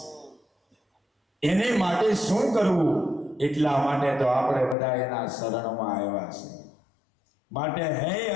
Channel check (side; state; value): right; drops out; at 4.8 s